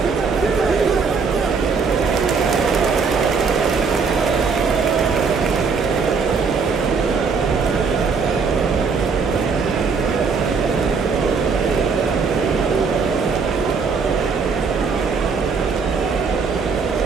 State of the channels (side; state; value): left; quieter; 5.2 dB